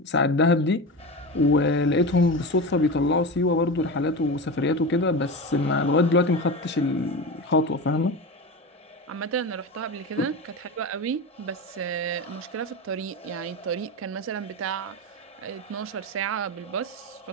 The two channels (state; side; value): normal; both; correlation 0.24